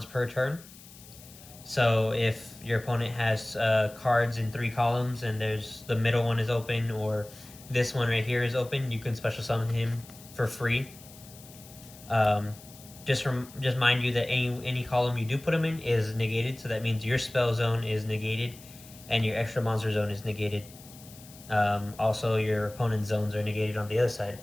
per turn. So if your opponent has cards in 3 columns and there's the middle one is open, or this one right here is open, you can special summon him for free. Just mind you that any column you do put him in is negated, so that means your spell zone is negated and your extra monster zone is negated. Also, your opponent's zones are negated on the other side.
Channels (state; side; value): noise; left; hiss, 20 dB below the sound